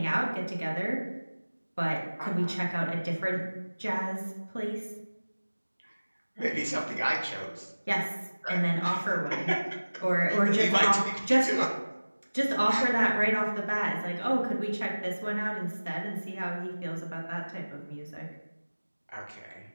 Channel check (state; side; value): inverted; both; correlation -1.00